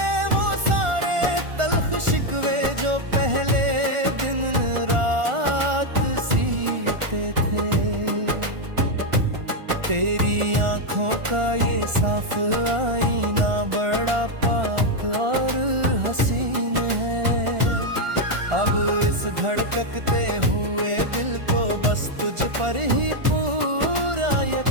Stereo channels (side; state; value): left; late; 1.4 ms